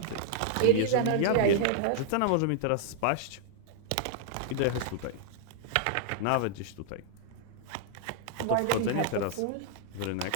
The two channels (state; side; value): different; both; correlation -0.01